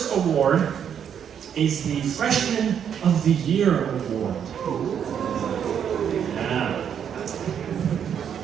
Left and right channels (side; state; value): left; quieter; 8.4 dB